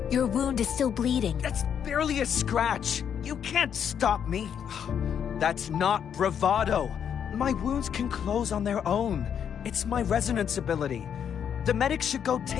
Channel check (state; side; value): quieter; right; 8.3 dB